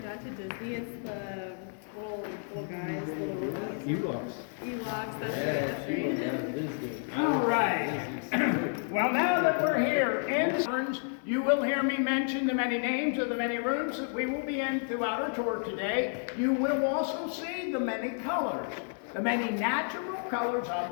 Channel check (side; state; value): right; silent; 57 dB below the other